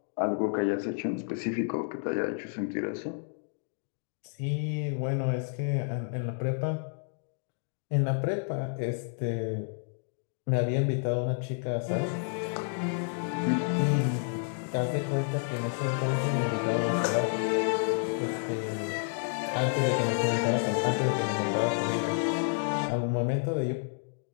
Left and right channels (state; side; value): silent; right; 58 dB below the other